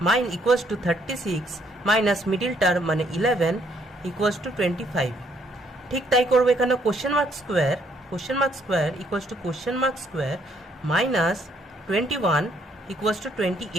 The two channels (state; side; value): normal; both; correlation 0.68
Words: মাইন equals to 36 minus middle term মানে 11 ইকুয়ালস টু 25। ঠিক তাই করবো এখানে। Question mark square equals to question mark square minus 21 equals to